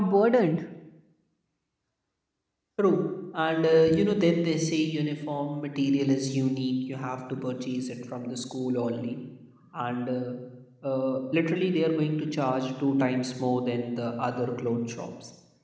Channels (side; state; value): both; identical; correlation 1.00